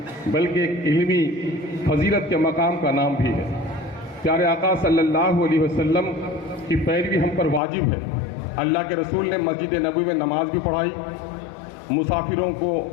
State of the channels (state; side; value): drops out; right; at 7.6 s